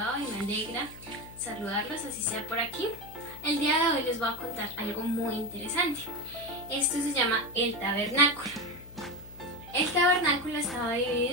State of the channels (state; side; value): noise; left; hum, 18 dB below the sound